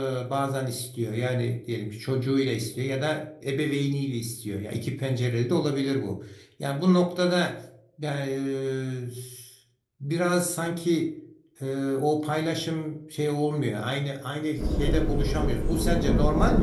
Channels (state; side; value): identical; both; correlation 1.00